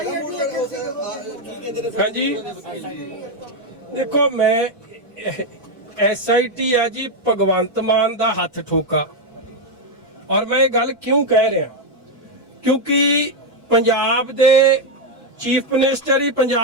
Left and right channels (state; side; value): normal; both; correlation 0.03